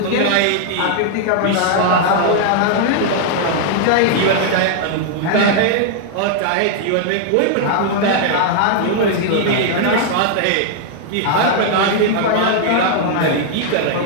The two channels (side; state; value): both; different; correlation 0.00